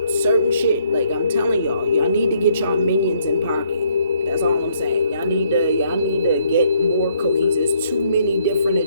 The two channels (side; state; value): both; inverted; correlation -0.68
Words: certain shit. Like, I'm telling y'all need to get y'all minions in pocket. That's all I'm saying. Y'all need to get more cohesive. There's too many different